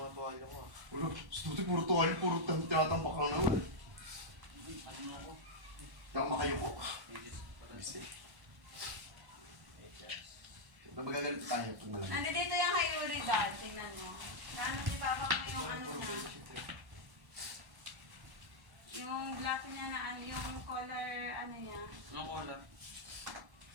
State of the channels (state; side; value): late; left; 1.1 ms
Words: matuwala ko ah. Wala, sa tuti puro tuwali, puro tinatambak lang naman eh. Ano ako? Hindi ako makayuko. Magagalit tayo pag malamig. Nandito yung kay Yuri dad. Tingnan mo. Naano si Papa ko yung ano na. Yung black niya na ano, yung color ano niya. Anong color?